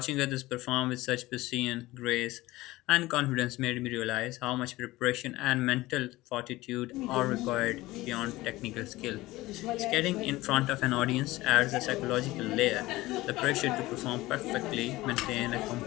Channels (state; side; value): quieter; right; 18.7 dB